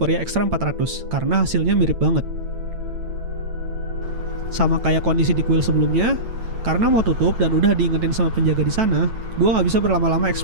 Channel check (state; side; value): late; left; 9.1 ms